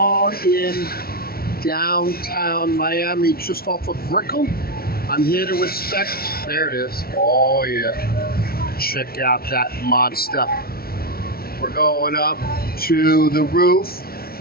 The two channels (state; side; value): late; right; 0.44 ms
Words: in downtown Miami, just off of Brickell. I'm here to inspect. There it is. Oh, yeah. Check out that monster. We're going up to the roof